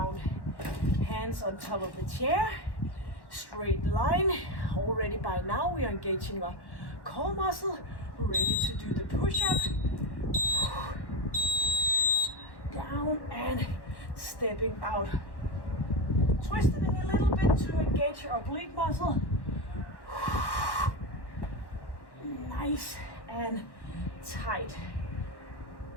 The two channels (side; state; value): right; late; 1.1 ms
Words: Hands on top of the chair. Straight line. Already by now we are engaging our core muscle. Ready to do the push-up. Down and stepping out. Twisting a little bit to engage your oblique muscle. Nice and tight.